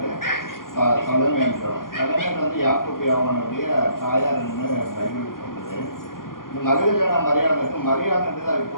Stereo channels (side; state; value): right; late; 0.91 ms